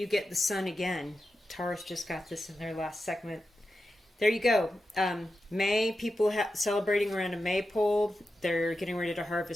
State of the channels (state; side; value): normal; both; correlation 0.90